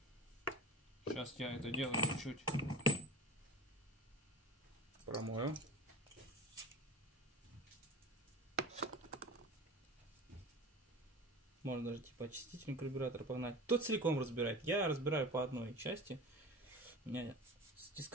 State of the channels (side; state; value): both; normal; correlation 0.33